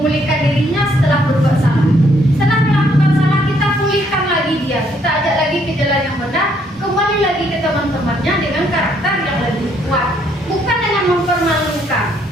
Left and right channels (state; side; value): normal; both; correlation 0.69